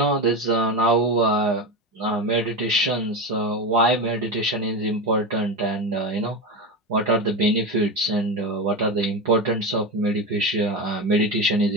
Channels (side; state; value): both; normal; correlation 0.19